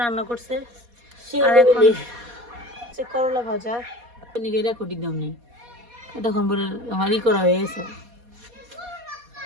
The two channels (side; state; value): left; late; 4.2 ms